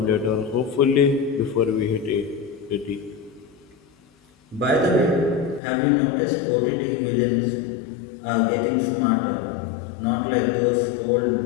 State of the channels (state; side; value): drops out; right; at 5.6 s